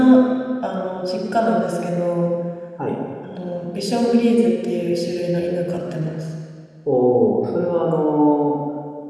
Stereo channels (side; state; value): both; identical; correlation 1.00